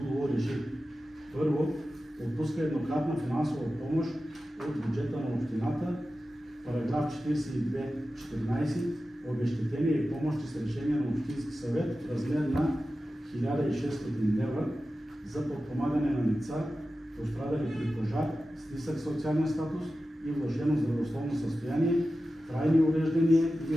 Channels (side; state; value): both; normal; correlation 0.93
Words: реши: първо, отпуска еднократна финансова помощ от бюджета на общината, параграф 42.14, обезщетение и помощи с решение на Общински съвет в размер на 1600 лева за подпомагане на лица, пострадали при пожар с нисък социален статус и влошено здравословно състояние, трайни увреждания